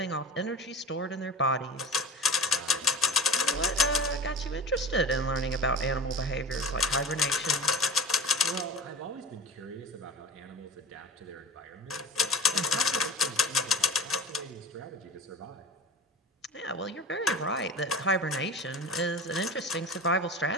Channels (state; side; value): normal; both; correlation 0.35